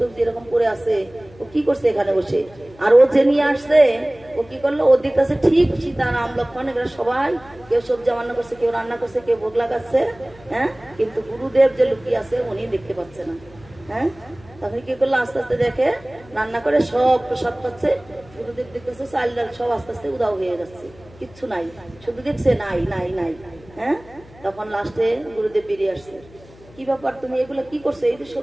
এরকম করে আছে, ও কি করছে এখানে বসে। আর ও যে নিয়ে আসছে, ও কি করলো, ও দিতেছে ঠিক সীতা রাম লক্ষণ এগুলো সবাই, কেউ সবজি রান্না করছে, কেউ রান্না করছে, কেউ ভোগ লাগাচ্ছে। হ্যাঁ, কিন্তু গুরুদেব যে লুকিয়ে আছে উনি দেখতে পাচ্ছে না। হ্যাঁ, তখন কি করলো, আস্তে আস্তে দেখে রান্না করে সব প্রসাদ পাচ্ছে, গুরুদেব দেখতেছে চাল ডাল সব আস্তে আস্তে উদাও হয়ে যাচ্ছে, কিচ্ছু নাই, শুধু দেখছে নাই নাই নাই। হ্যাঁ, তখন লাস্টে গুরুদেব বেরিয়ে আসছে, কি ব্যাপার তুমি এগুলো কি করছো, এই যে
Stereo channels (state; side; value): noise; left; hum, 23 dB below the sound